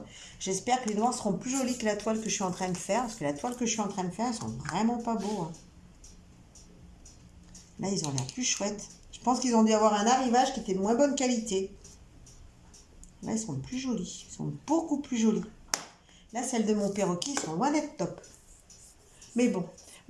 J'espère que les noirs seront plus jolis que la toile que je suis en train de faire. Parce que la toile que je suis en train de faire, elles sont vraiment pas beaux. Hein. Là, ils ont l'air plus chouettes. Je pense qu'ils ont dû avoir un arrivage qui était de moins bonne qualité. Là, ils sont plus jolis. Ils sont beaucoup plus jolis. Là, celles de mon perroquet, ils sont loin d'être top. Mais bon.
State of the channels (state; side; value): identical; both; correlation 1.00